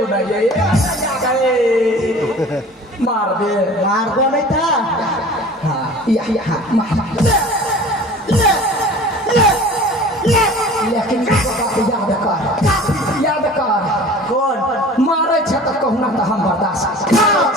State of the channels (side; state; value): both; normal; correlation 0.43